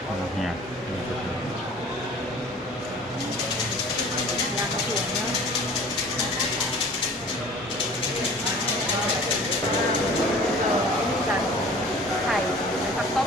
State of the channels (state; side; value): normal; both; correlation 0.46